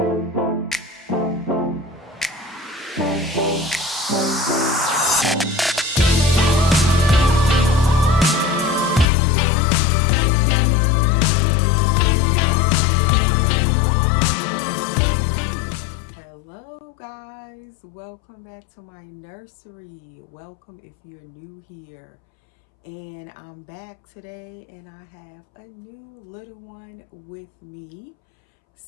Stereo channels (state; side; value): drops out; right; at 9.1 s